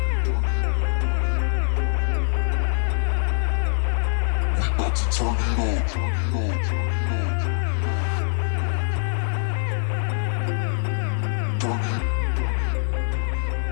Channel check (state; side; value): silent; right; digital silence